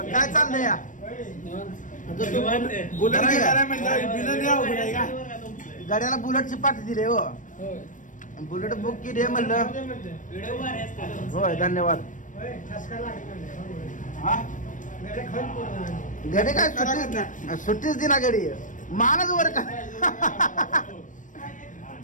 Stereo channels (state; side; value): late; right; 0.37 ms